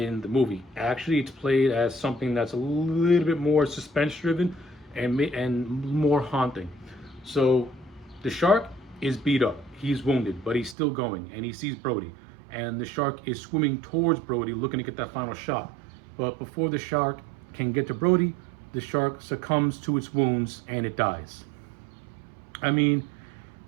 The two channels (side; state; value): left; drops out; at 10.8 s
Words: the movie. Actually, it's played as something that's a little bit more suspense-driven and more haunting. So The shark is beat up. He's wounded, but he's still going, and he sees Brody. And the shark is swimming towards Brody, looking to get that final shot. But before the shark can get to Brody, the shark succumbs to its wounds and it dies. I mean,